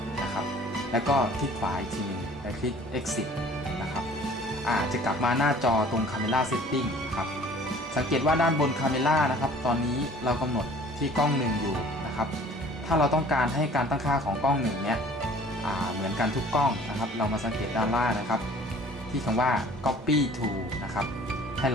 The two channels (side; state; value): both; normal; correlation 0.51